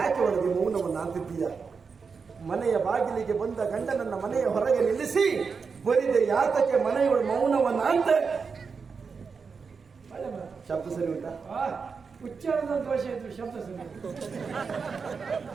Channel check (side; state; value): left; quieter; 5.4 dB